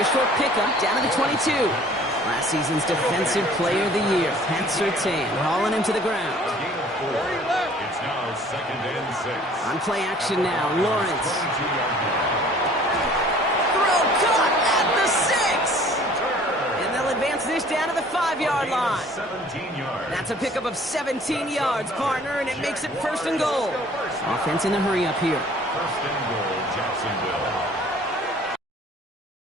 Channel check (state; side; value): normal; both; correlation 0.52